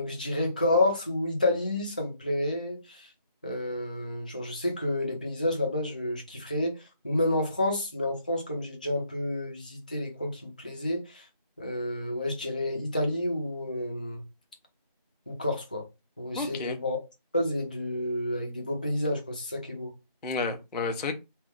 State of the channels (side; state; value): both; inverted; correlation -0.69